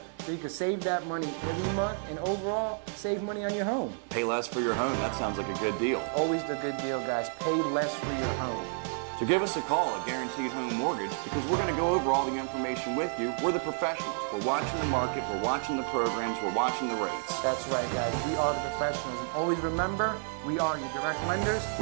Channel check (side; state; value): left; silent; 58 dB below the other